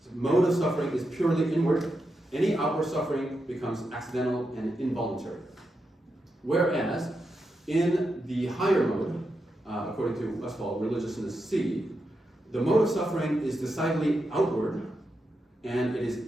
mode of suffering is purely inward. Any outward suffering becomes accidental and involuntary. Whereas in the higher mode, according to Westphal, Religiousness C, the mode of suffering is decidedly outward, and it is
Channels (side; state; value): both; normal; correlation 0.86